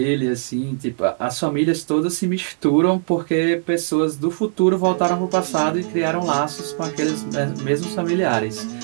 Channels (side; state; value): left; silent; digital silence